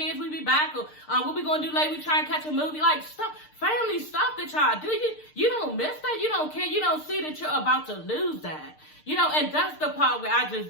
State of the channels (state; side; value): late; right; 6.6 ms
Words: we be back, or what we going to do later, we try and catch a movie, like stuff, family stuff. at y'all. Do you don't miss that? You don't care. You don't see that you're about to lose that. You know, and that's the part where I just